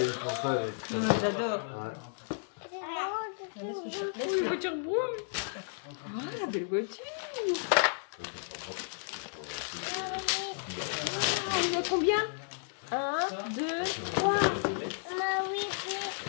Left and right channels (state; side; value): silent; right; digital silence